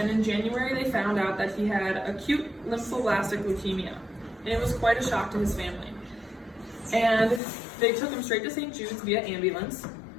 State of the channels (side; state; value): right; drops out; at 7.4 s